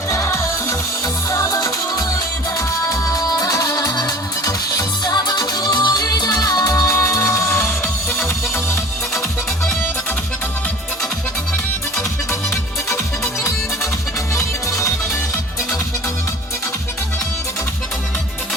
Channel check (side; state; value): both; normal; correlation 0.43